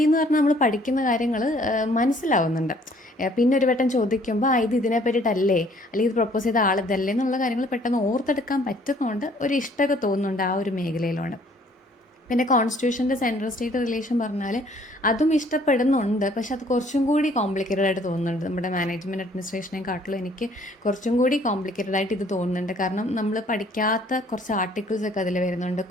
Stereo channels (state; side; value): normal; both; correlation 0.60